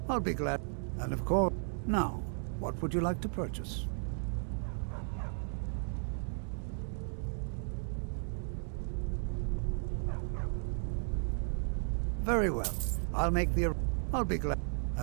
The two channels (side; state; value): left; silent; 55 dB below the other